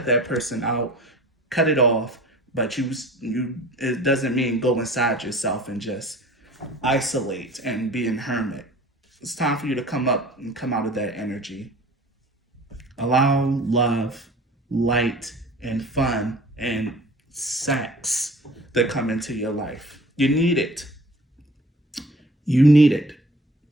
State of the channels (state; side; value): normal; both; correlation 0.45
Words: that person out, cut it off. But it doesn't mean go inside yourself and just isolate and be a hermit. It's time for you to come up and come out of that energy. Allow love, light, and fun and sex to come into your life. You need it. You need it.